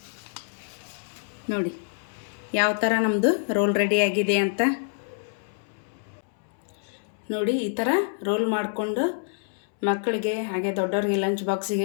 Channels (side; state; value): right; silent; 60 dB below the other